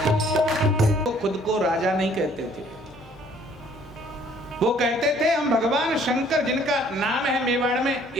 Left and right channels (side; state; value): both; normal; correlation 0.60